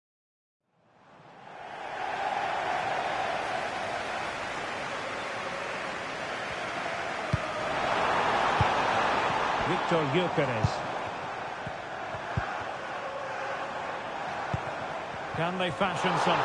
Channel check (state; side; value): identical; both; correlation 1.00